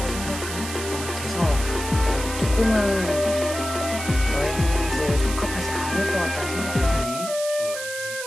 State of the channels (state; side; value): noise; right; hiss, 8 dB below the sound